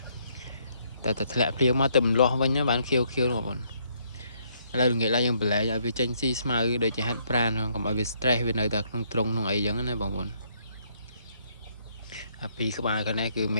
តែធ្លាក់ភ្លៀងមកទៅម្លាស់វិញបានខៀវបងប្អូនឥឡូវងាកឡើងយើងបលែងឲ្យវាចេញស៊ី smile ដូចជាហាត់ប្រាណកុំឲ្យវា stress វានៅតែក្នុងទ្រុងក្នុងអីចឹងណាបងប្អូនអាពីក្បាលកនេះគឺម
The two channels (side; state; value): both; inverted; correlation -0.70